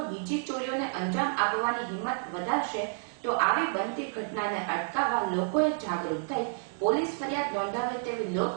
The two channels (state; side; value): silent; left; digital silence